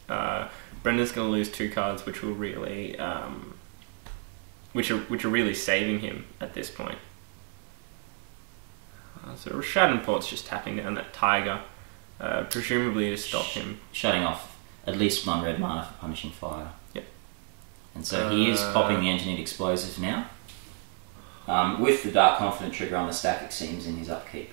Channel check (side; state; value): left; quieter; 37.4 dB